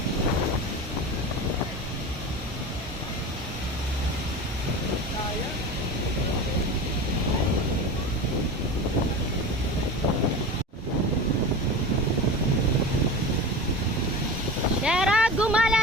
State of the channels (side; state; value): both; normal; correlation 0.30